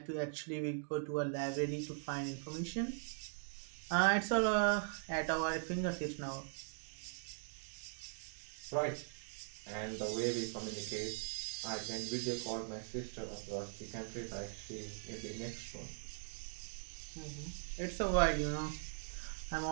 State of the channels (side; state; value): left; silent; digital silence